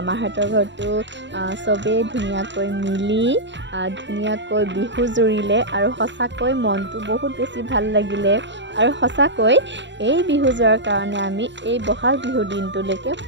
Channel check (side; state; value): left; late; 0.53 ms